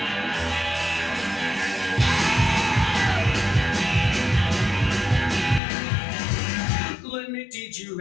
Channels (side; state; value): right; drops out; at 5.6 s